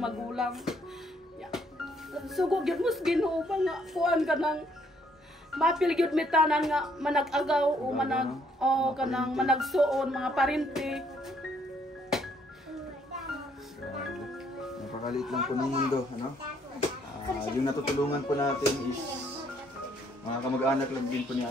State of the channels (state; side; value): normal; both; correlation 0.68